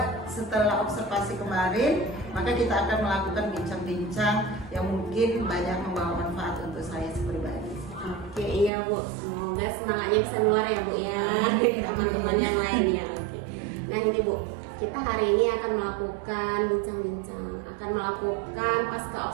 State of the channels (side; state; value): left; drops out; at 8.7 s